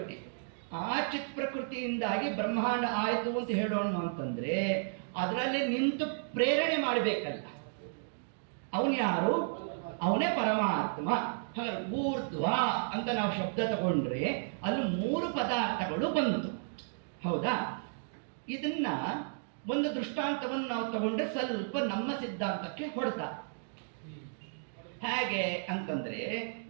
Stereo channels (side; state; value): left; silent; digital silence